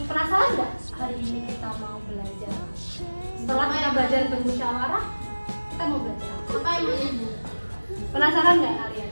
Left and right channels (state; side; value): inverted; both; correlation -1.00